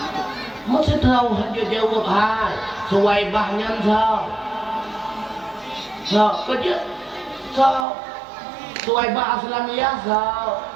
masih tahu hanya jawab hai Suwaibah nyantau kerja Suwaibah Aslamiyah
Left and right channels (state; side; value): drops out; left; at 7.9 s